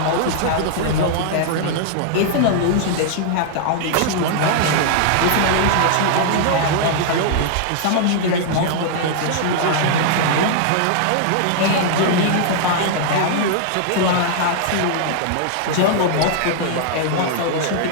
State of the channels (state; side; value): different; both; correlation -0.01